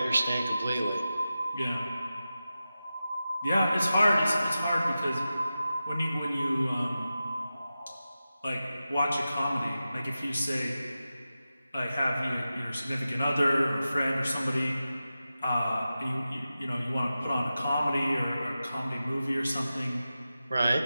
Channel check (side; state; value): both; inverted; correlation -0.93